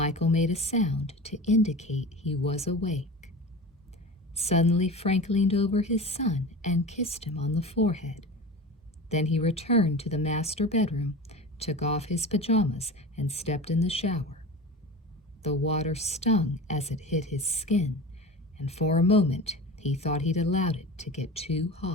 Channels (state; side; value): normal; both; correlation 0.32